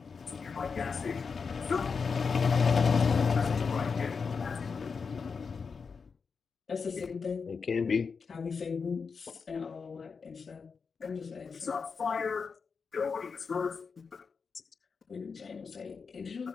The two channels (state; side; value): quieter; right; 5.4 dB